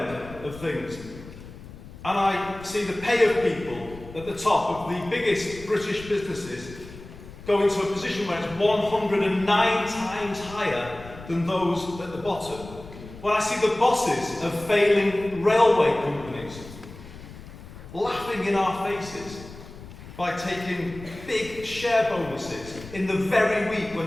of things, and I see the pay of people at the top of the biggest British businesses go into a position where it's 109 times higher than those at the bottom. When I see the bosses of failing railway companies laughing in our faces by taking big share bonuses in the very week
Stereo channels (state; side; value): noise; left; rumble, 16 dB below the sound